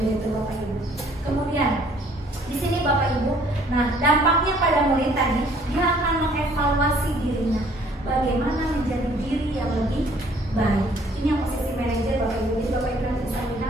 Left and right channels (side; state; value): both; normal; correlation 0.59